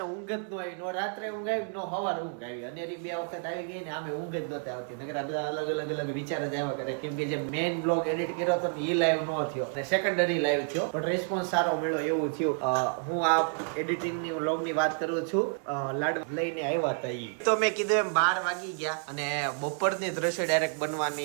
ઊંઘ જ ન આવી, નો રાત્રે ઊંઘ આવી, નો સવાર ઊંઘ આવી. અને બે વખત આવી ગઈ ને આમે ઊંઘ જ નહોતી આવતી. નકર આ બધા અલગ વિચાર જ આવ્યા કરે. કેમ કે જે મેઇન બ્લોગ એડિટ કર્યો હતો એ લાઈવ નો થયો અને સેકન્ડરી લાઈવ થયો, પણ રિસ્પોન્સ સારો મળ્યો એવું થયું. હું આ એડિટિંગની વ્લોગની વાત કરું છું. લાડ લઈને આવ્યા હતા ઈ તો મેં કીધું એમ 12 વાગી ગયા અને બપોરની દ્રશ્ય ડાયરેક્ટ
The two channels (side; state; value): left; silent; 58 dB below the other